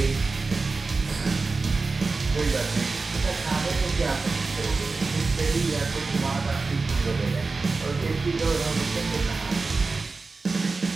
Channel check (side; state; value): left; quieter; 4.0 dB